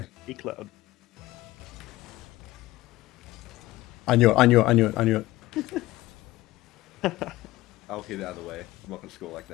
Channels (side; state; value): right; quieter; 17.6 dB